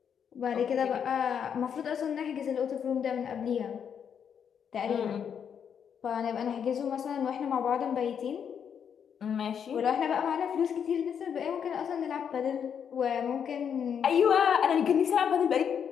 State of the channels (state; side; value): quieter; right; 7.8 dB